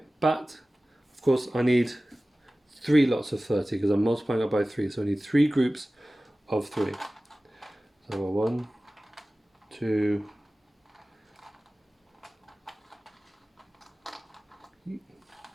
but of course I need 3 lots of 30 because I'm multiplying it by 3, so I need 3 groups of 3. So 1, 2,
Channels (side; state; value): both; normal; correlation 0.97